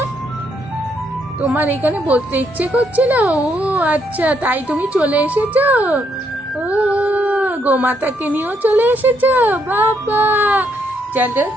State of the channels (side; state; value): both; normal; correlation 0.74